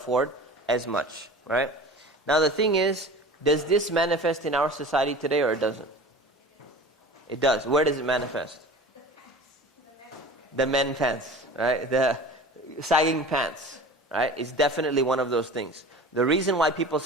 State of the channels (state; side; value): normal; both; correlation 0.39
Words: as much, right? Now the thing is, does this manifest in our society today or it doesn't? It does. Where does it manifest? The men pants, right? The sagging pants, right? It's definitely one of those things. The reason why people